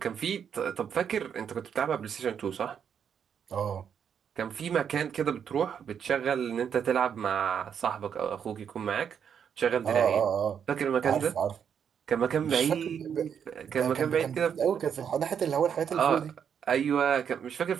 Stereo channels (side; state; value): left; quieter; 7.8 dB